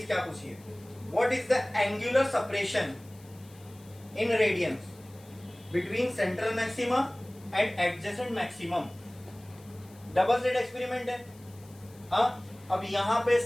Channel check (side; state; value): left; noise; hiss, 25 dB below the sound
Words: क्या पूछी है, what is the angular separation in radians between central maxima and adjacent maximum? Double slit experiment है। हाँ, अब यहाँ पे